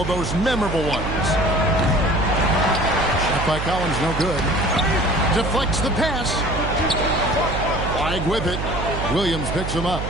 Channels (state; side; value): noise; right; hum, 4 dB below the sound